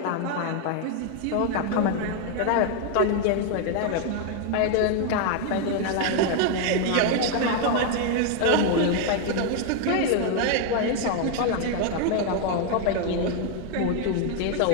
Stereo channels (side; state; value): both; different; correlation 0.01